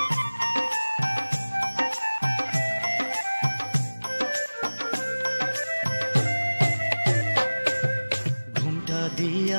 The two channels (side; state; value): both; inverted; correlation -1.00